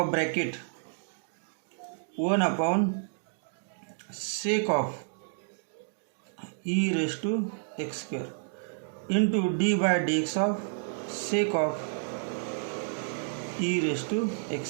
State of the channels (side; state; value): left; silent; digital silence